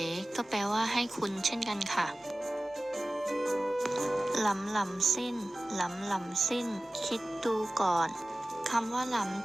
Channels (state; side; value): normal; both; correlation 0.96